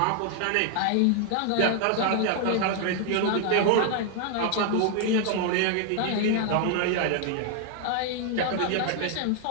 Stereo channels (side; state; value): both; different; correlation 0.00